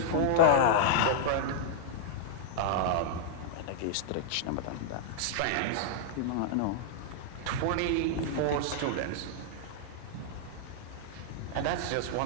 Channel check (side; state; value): both; different; correlation -0.01